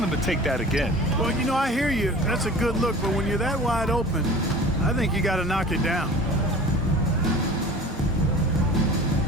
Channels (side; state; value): both; normal; correlation 0.41